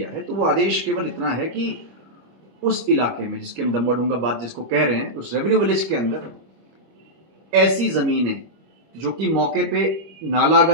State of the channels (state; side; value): late; left; 25 ms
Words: है, तो वो आदेश केवल इतना है कि उस इलाके में जिसके हम दमवा-डूंगा बात जिसको कह रहे हैं, उस रेवेन्यू विलेज के अंदर ऐसी ज़मीनें जो कि मौके पे नाला